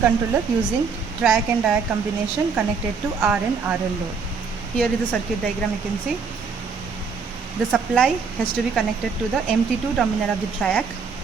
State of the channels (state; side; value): quieter; left; 5.4 dB